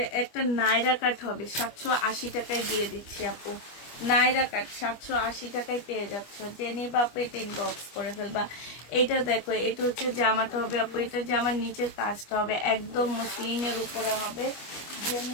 একটা নাইরা কাট হবে, 780 টাকায় দিয়ে দিচ্ছি আপু। নাইরা কাট 780 টাকায় পেয়ে যাচ্ছ। জেনি বা পেট ইনবক্স করে ফেলবা। এটা দেখো, এটা হচ্ছে জামাটা হবে আপু। এটা জামার নিচের কাজটা হবে একদম মসলিনের উপরে হবে।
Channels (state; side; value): late; right; 25 ms